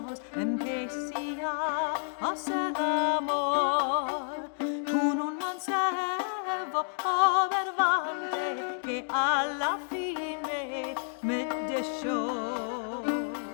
empecé a hacer amor con un mancebo verbante que a la fin me dejó.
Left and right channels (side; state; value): right; silent; digital silence